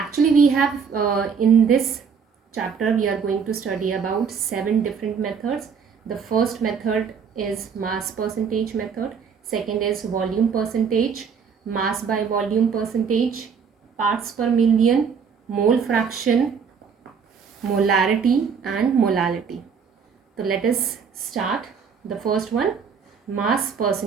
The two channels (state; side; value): quieter; left; 6.3 dB